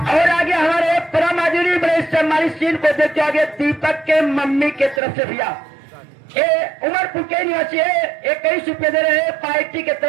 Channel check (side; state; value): left; drops out; at 5.0 s